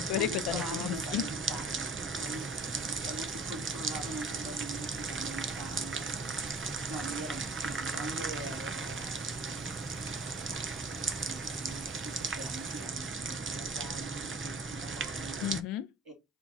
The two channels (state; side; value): normal; both; correlation 0.43